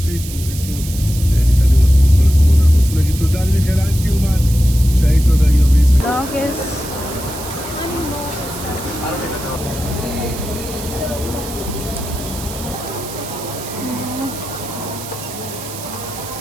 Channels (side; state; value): right; noise; hiss, 12 dB below the sound